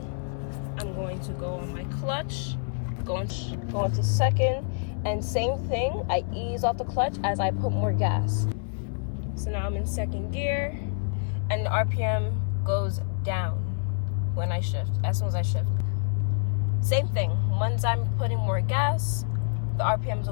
I'm going to go on my clutch, go into second, and same thing, I ease off the clutch as I put more gas. So now I'm in second gear. And the RPM goes down when I shift, as soon as I shift. Same thing, once I'm putting more gas, the RPMs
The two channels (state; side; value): silent; right; 60 dB below the other